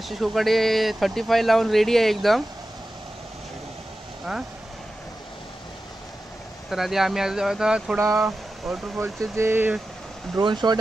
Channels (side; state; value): both; normal; correlation 0.93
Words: कोकडे 35 लावून रेडी आहे एकदम। हां, तर आधी आम्ही आता थोडा वॉटरफॉलचे जे ड्रोन शॉट